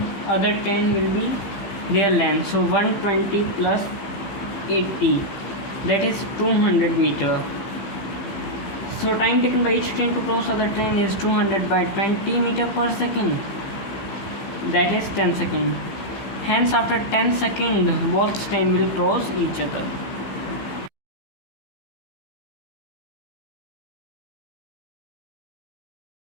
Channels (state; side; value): late; right; 15 ms